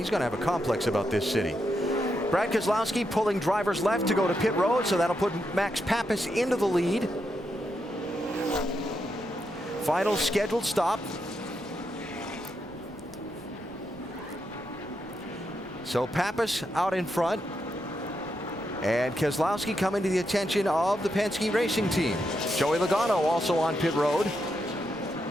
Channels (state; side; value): noise; right; rumble, 22 dB below the sound